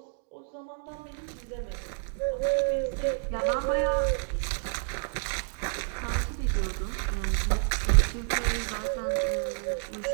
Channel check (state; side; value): silent; left; 58 dB below the other